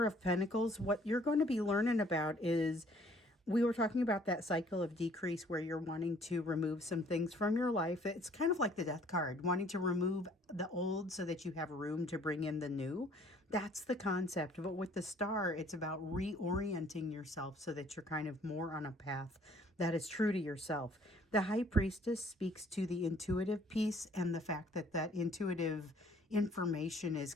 of Pentacles. What you're going to be learning about is, we were talking about that cycle of decrease where you're wanting to remove some things from your life. It's kind of like the Death card, wanting to remove the old so that you have room to bring in the new. That's the concept. But with the Star, it's about reorienting yourself so that you're kind of more on a path that is true to yourself. The High Priestess speaks to the intuitive piece and the fact that that intuitive information is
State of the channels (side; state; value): both; normal; correlation 0.59